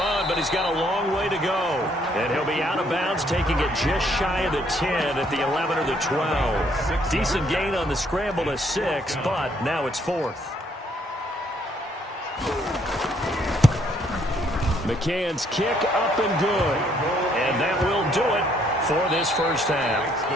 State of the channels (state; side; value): normal; both; correlation 0.68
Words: but he's got a long way to go. And he'll be out of bounds, taking it just shy of the 10 at the 11 or the 12. Decent gain on the scramble to 6, but now it's 4th. McCann's kick up and good. And that will do it for this first half.